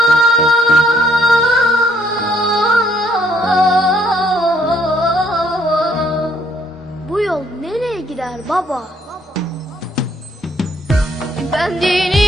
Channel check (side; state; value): both; normal; correlation 0.67